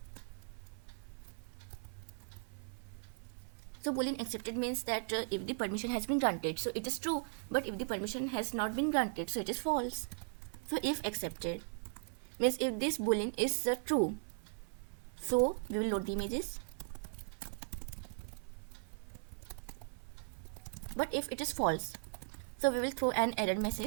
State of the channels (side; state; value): left; silent; 52 dB below the other